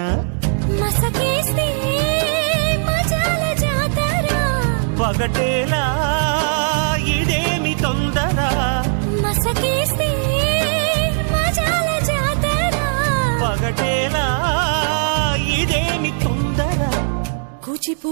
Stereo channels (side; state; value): left; silent; digital silence